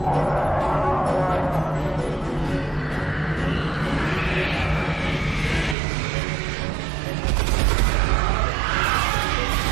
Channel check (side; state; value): left; drops out; at 5.8 s